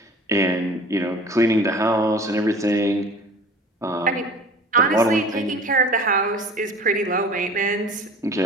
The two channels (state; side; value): normal; both; correlation 0.43